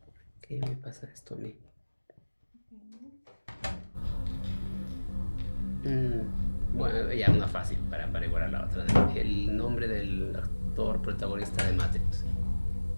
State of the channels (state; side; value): inverted; both; correlation -1.00